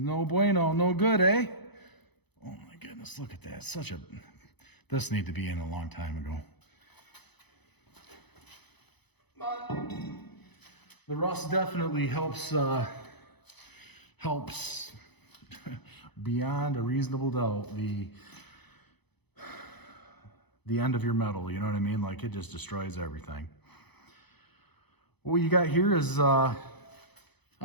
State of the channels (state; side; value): late; right; 0.99 ms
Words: bueno, no good, eh? Oh my goodness, look at that. This needed to be in a long time ago. But the rust definitely helps beyond a reasonable doubt the end of your metal, you know what I mean? Like it just destroys everything. What you got here is